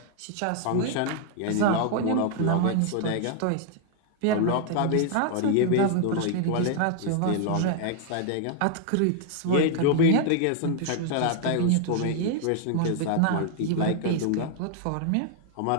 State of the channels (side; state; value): both; different; correlation 0.00